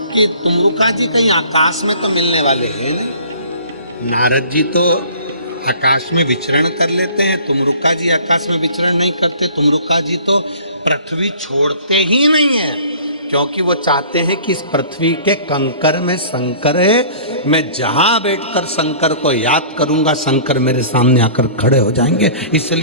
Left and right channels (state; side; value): inverted; both; correlation -0.48